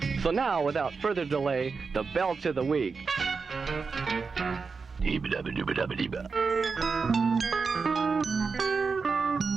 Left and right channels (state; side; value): quieter; left; 4.9 dB